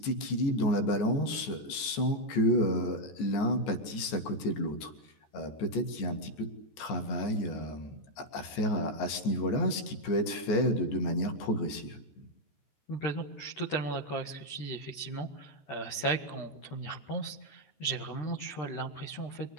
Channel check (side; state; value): right; late; 14 ms